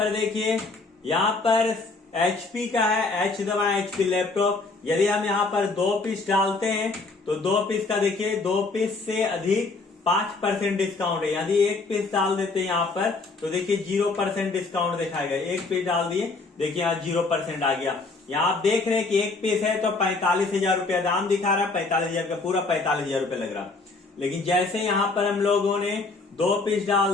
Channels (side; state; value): right; quieter; 3.7 dB